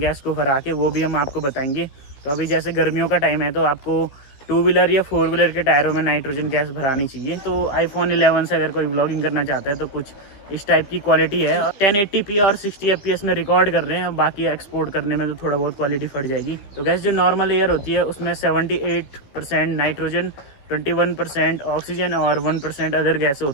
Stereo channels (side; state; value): right; late; 15 ms